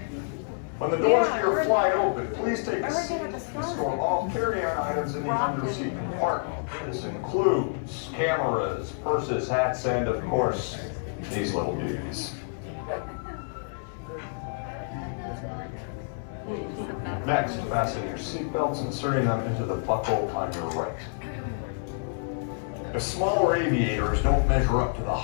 When the doors to your flight open, please take a seat and store all carry-on items in the under-seat compartment. This includes cameras, purses, hats, and of course, these little beauties. Next, fasten your seatbelts, inserting them into the buckle on your right. If smaller aviators don't measure up to the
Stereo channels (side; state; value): right; silent; digital silence